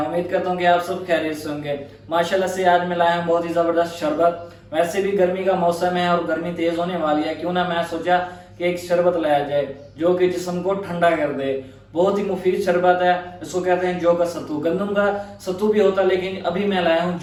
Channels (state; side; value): identical; both; correlation 1.00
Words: करता हूँ कि आप सब खैरियत से होंगे। माशाल्लाह से आज मैं लाया हूँ बहुत ही ज़बरदस्त शरबत। वैसे भी गर्मी का मौसम है और गर्मी तेज़ होने वाली है, क्यों ना मैं सोचा कि एक शरबत लाया जाए जो कि जिस्म को ठंडा कर दे। बहुत ही मुफीद शरबत है। इसको कहते हैं जौ का सत्तू। गंदम का सत्तू भी होता है, लेकिन अभी मैं लाया हूँ